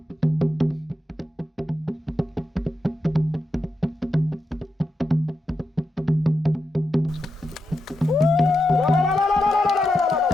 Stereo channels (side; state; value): both; normal; correlation 0.86